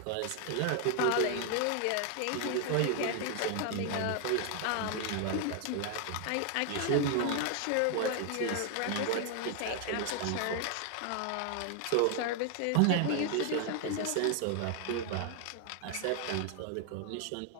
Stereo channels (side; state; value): both; different; correlation 0.00